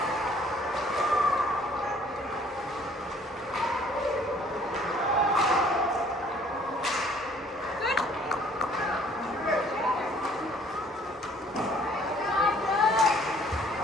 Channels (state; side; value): normal; both; correlation 0.58